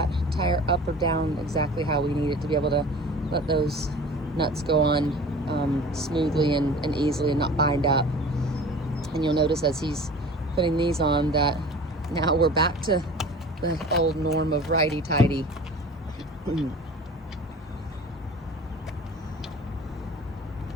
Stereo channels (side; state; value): both; normal; correlation 0.41